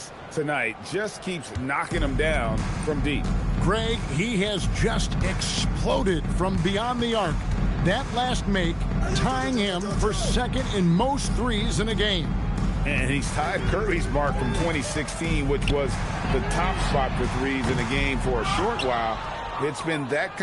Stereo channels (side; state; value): both; identical; correlation 1.00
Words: tonight. Just keeps knocking them down from deep. Greg, he has just exploded from beyond the arc. That last make tying him for second in most threes in a game. And he's tied Curry's mark from 2016, which was the top spot for threes in the game for a short while. It's been that